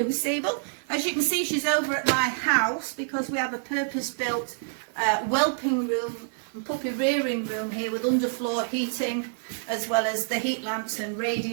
Sable. As you can see, she's over at my house because we have a purpose-built whelping room and puppy rearing room here with underfloor heating, as well as the heat lamps and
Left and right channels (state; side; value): silent; left; digital silence